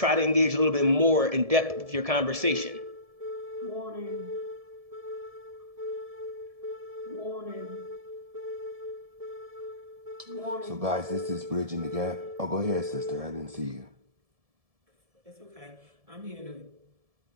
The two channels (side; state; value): left; late; 1.7 ms